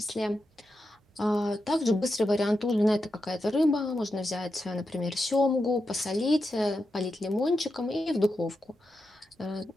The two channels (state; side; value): normal; both; correlation 0.88